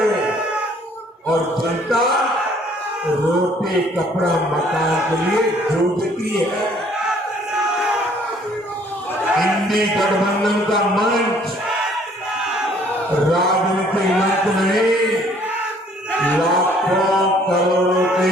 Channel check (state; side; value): normal; both; correlation 0.60